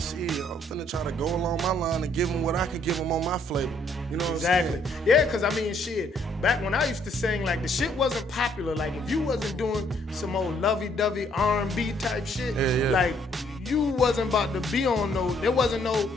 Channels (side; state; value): both; normal; correlation 0.67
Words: like, shit, I'm finna try to go along my line and give them what I can give them on my flavor. You know what I'm saying? Yeah, because I mean, shit, back when I used to sing, like the shit wasn't popular. Like if you wasn't doing some old lovey-dovey R&B type shit, like you wasn't about to be on there wasn't no